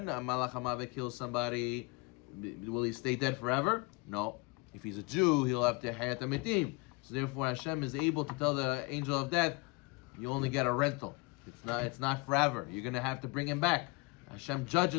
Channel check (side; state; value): right; quieter; 27.6 dB